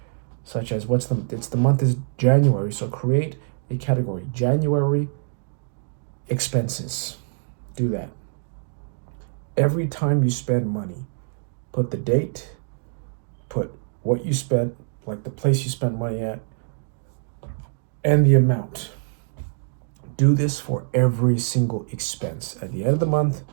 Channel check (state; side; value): silent; left; digital silence